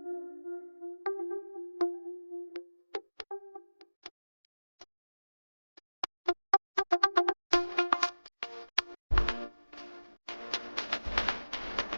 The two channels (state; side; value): inverted; both; correlation -1.00